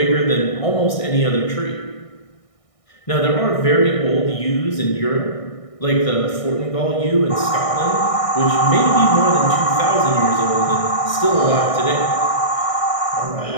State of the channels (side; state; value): right; late; 1.6 ms